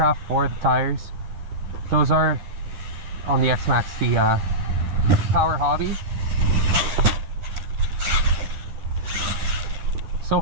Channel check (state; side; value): late; left; 11 ms